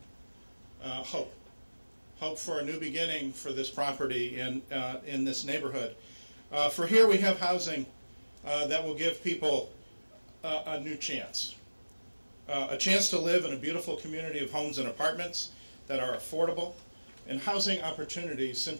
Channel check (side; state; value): both; inverted; correlation -1.00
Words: hope. Hope for a new beginning for this property in this neighborhood. For here we have housing that will give people a new chance. A chance to live in a beautiful community of homes and apartments that are affordable, and housing opportunities